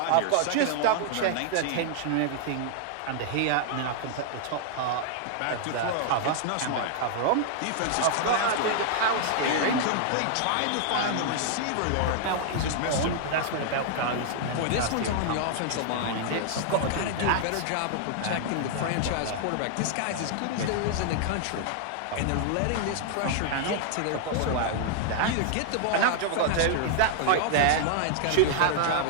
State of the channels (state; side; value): different; both; correlation -0.01